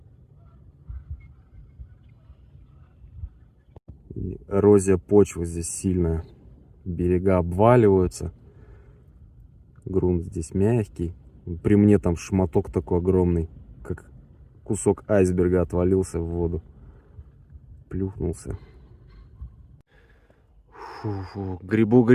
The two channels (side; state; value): both; identical; correlation 1.00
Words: И эрозия почвы здесь сильная. Берега обваливаются. Грунт здесь мягкий. При мне там шматок такой огромный, как кусок айсберга, отвалился в воду. Плюхнулся. Фу-фу.